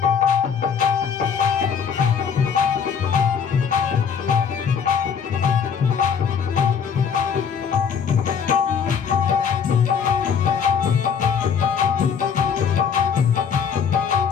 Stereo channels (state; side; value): quieter; right; 7.0 dB